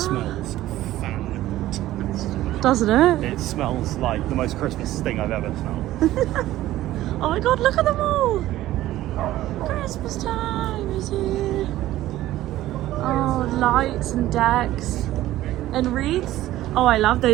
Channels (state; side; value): quieter; left; 14.9 dB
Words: fantastic. Doesn't it? It smells like the most Christmas thing I've ever smelled. Oh my god, look at them all! Christmas time is here. Oh, lights and decks and wreaths. Oh, I love